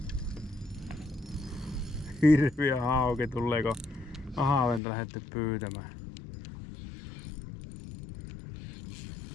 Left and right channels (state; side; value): drops out; right; at 4.8 s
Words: Hirviä hauki tulee, kun ahaventa lähdette pyytämään.